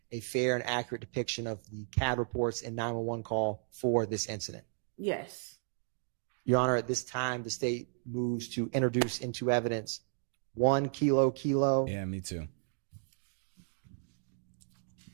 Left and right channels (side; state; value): left; silent; digital silence